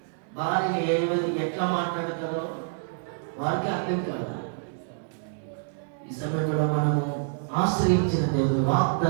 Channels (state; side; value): silent; left; digital silence